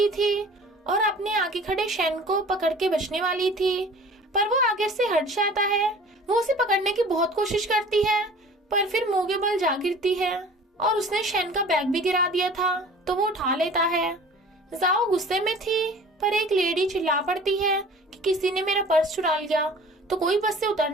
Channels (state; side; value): normal; both; correlation 0.45